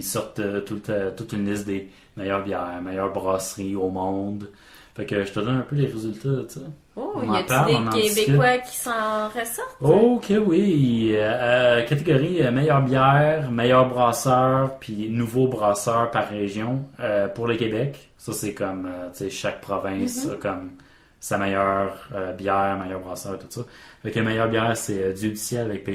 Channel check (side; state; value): both; identical; correlation 1.00